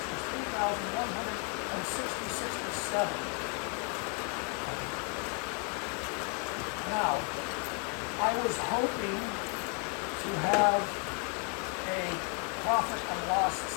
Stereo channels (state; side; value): quieter; right; 37.8 dB